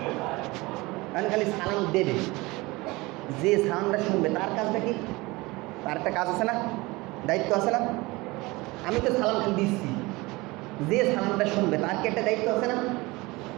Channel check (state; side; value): quieter; left; 22.5 dB